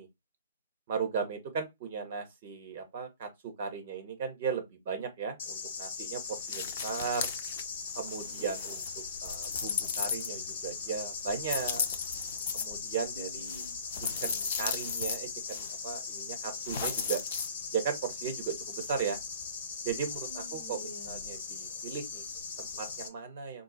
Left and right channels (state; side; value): inverted; both; correlation -0.46